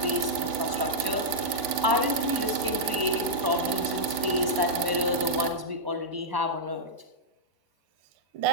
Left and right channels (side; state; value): left; late; 1.4 ms